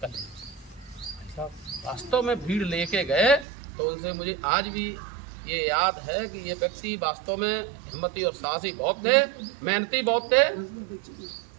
कर लीजिए। अच्छा, वास्तव में भीड़ लेके गए तो उनसे मुझे आज भी ये याद है कि ये व्यक्ति वास्तव में हिम्मती और साहसी बहुत थे, मेहनती बहुत थे,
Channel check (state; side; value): drops out; left; at 3.5 s